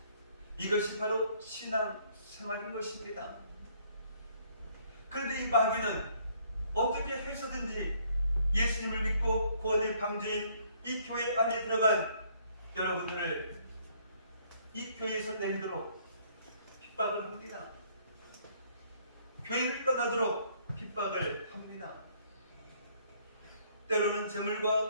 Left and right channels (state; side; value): inverted; both; correlation -0.64